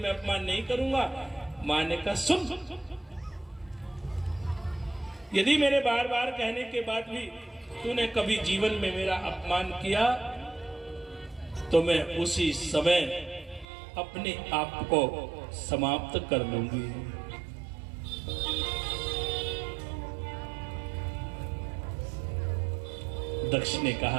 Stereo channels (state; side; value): drops out; left; at 13.7 s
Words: अपमान नहीं करूंगा। मां ने कहा, सुन, यदि मेरे बार बार कहने के बाद भी तूने कभी जीवन में मेरा अपमान किया तो मैं उसी समय अपने आप को समाप्त कर लूंगी। दक्ष ने